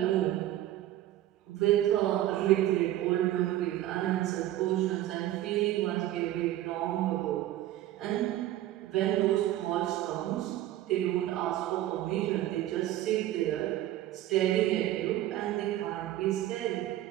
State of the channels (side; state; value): left; quieter; 13.9 dB